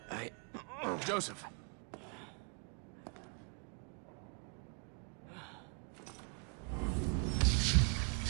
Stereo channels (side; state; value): left; quieter; 37.4 dB